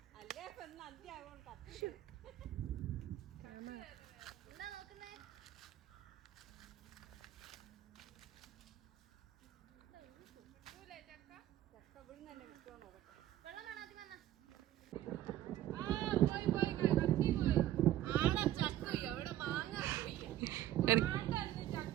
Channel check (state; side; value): quieter; left; 13.3 dB